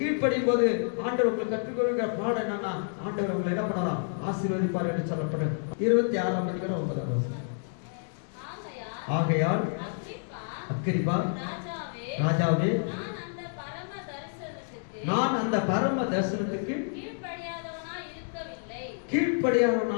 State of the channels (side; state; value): right; silent; digital silence